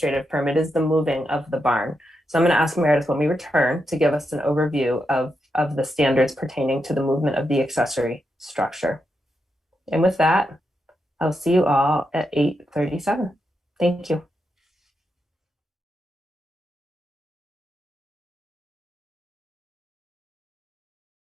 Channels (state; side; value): normal; both; correlation 0.85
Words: permit is the moving of the barn. So I'm going to ask Meredith when we return to give us an overview of the standards pertaining to the movement of the accessory structure. And with that, I'll see you all at 8:37. Thank you.